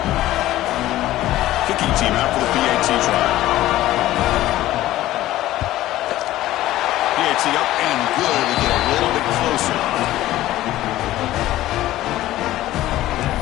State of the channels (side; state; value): right; quieter; 15.2 dB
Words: Kicking team out for the PAT try. PAT up and good to get a little bit closer.